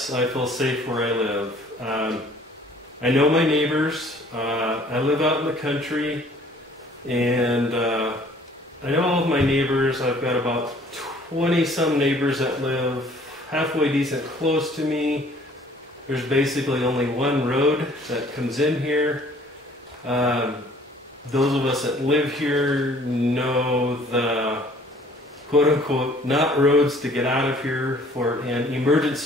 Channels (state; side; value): normal; both; correlation 0.55